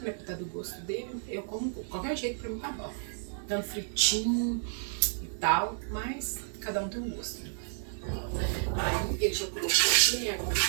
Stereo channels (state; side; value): silent; left; digital silence